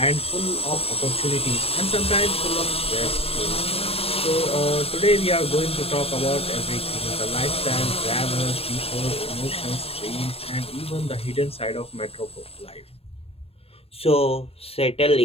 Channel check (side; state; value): right; late; 0.28 ms